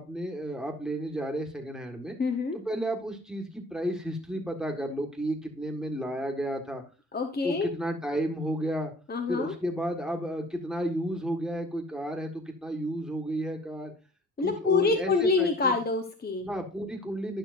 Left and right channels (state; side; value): normal; both; correlation 0.50